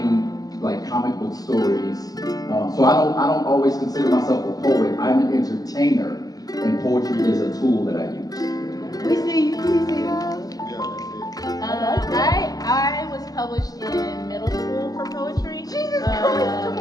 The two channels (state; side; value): late; right; 0.18 ms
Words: like comic book stories, so I don't always consider myself a poet. I'm an entertainer, and poetry is a tool that I use. We see you. I was published in middle school for poetry. Jesus Christ!